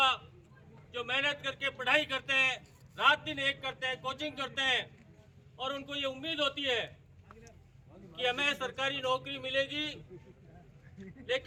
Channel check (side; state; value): both; identical; correlation 1.00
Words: जो मेहनत करके पढ़ाई करते हैं, रात दिन एक करते हैं, कोचिंग करते हैं और उनको ये उम्मीद होती है कि हमें सरकारी नौकरी मिलेगी,